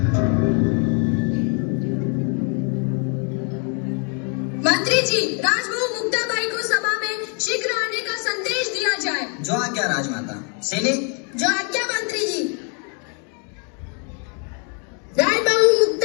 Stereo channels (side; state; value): right; quieter; 39.1 dB